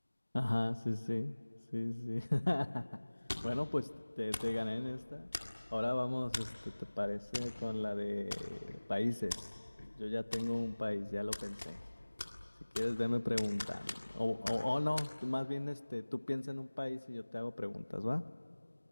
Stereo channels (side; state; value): both; inverted; correlation -1.00